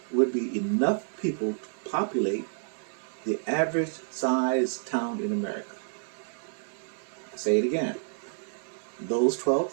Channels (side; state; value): left; silent; digital silence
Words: would be enough people to populate the average size town in America. I'll say it again. Those